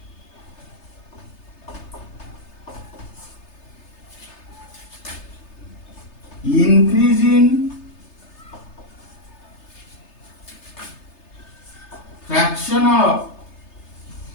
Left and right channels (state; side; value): late; right; 3.3 ms